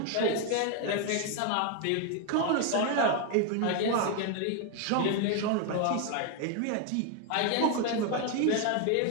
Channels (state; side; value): different; both; correlation 0.01